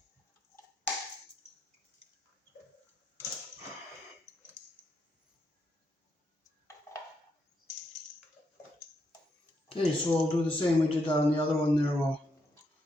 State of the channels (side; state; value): both; normal; correlation 0.79